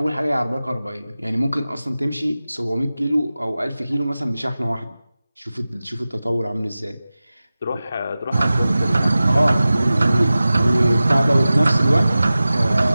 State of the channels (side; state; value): both; inverted; correlation -0.96